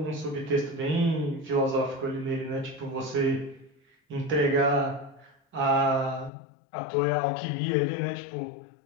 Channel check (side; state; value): right; drops out; at 6.3 s